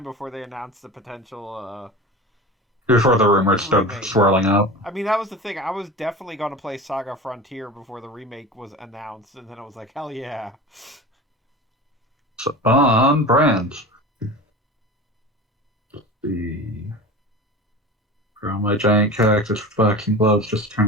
before they announced the potential... Before the rumors started swirling up. I mean, that was the thing. I was definitely going to play Saga Frontier before the remake was announced, and then I was like, hell yeah. So, on brand. The grow my giant cactus with boxing gloves just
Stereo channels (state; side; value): normal; both; correlation 0.32